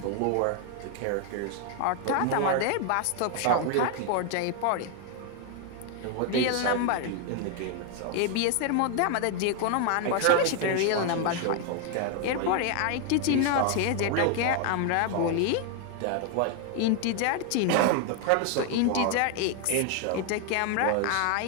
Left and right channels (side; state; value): both; different; correlation 0.00